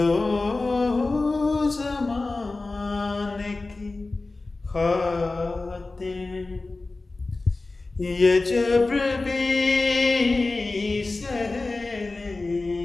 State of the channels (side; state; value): right; quieter; 3.4 dB